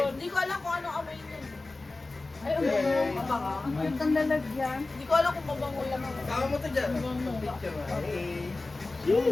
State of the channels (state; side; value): quieter; right; 3.3 dB